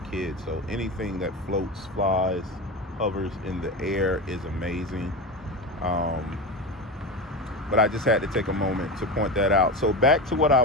kid, so anything that floats, flies, hovers in the air is amazing. But I just had to take a moment to point that out. So back to what I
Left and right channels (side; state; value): both; normal; correlation 0.22